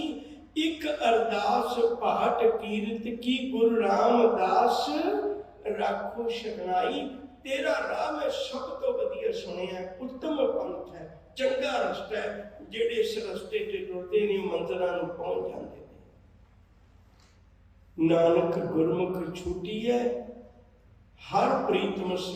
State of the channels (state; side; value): identical; both; correlation 1.00